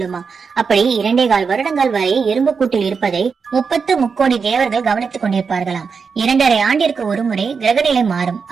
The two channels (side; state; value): left; quieter; 5.5 dB